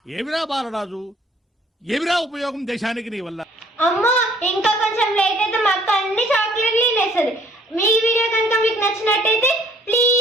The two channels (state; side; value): normal; both; correlation 0.60